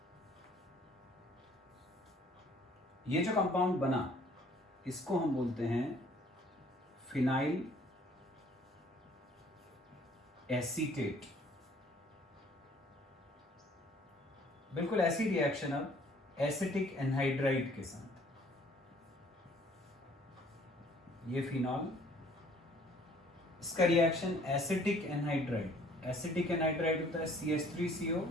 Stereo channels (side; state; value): both; normal; correlation 0.57